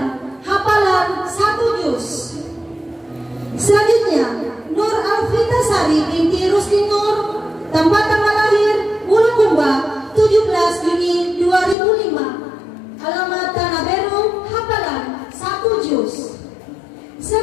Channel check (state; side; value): drops out; right; at 11.8 s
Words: hafalan 1 juz. Selanjutnya Nur Alfitasari binti Rusdi Nur, tempat tanggal lahir Bulukumba 17 Juni 2005, alamat Tanah Beru, hafalan 1 juz.